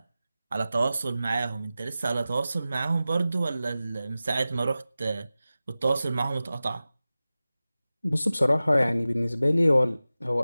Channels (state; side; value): inverted; both; correlation -0.95